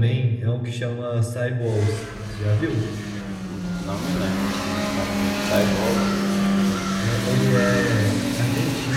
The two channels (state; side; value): identical; both; correlation 1.00